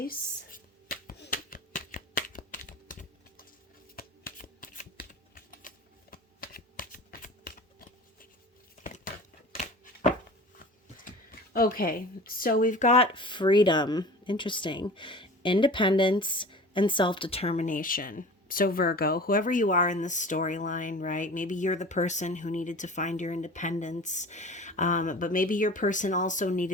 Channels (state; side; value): normal; both; correlation 0.39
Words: Okay, so we've got freedom, interesting, independence, and self-determination. So Virgo, whoever you are in this storyline, right? Maybe you're the person who needed to find your independence, but maybe your person also